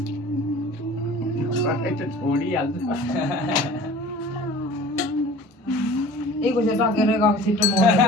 छोडिहाल्छ एक बजे टकेर गएको छिटो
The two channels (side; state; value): both; normal; correlation 0.44